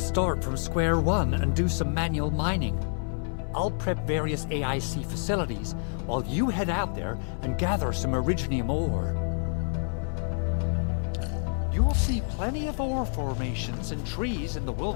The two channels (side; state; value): right; silent; 59 dB below the other